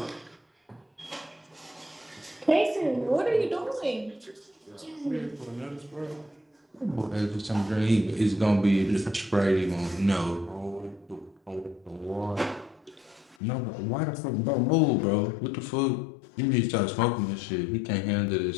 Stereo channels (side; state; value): right; drops out; at 13.4 s